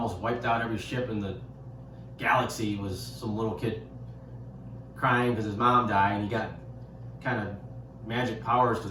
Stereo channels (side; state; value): both; identical; correlation 1.00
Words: wiped out every ship in the galaxy was some little kid crying because his mom died, and he got kind of magic powers because